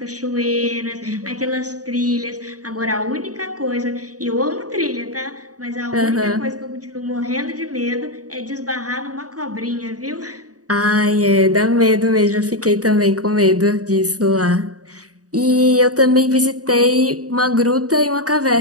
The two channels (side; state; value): left; late; 0.67 ms